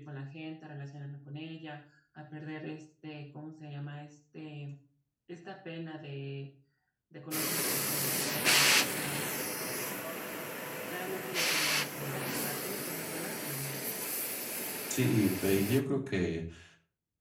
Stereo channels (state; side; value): identical; both; correlation 1.00